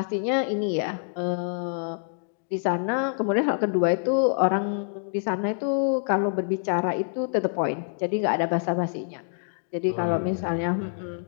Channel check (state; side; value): silent; right; digital silence